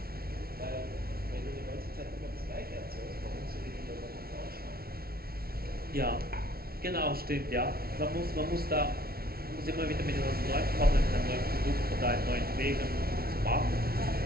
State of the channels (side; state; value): left; late; 0.44 ms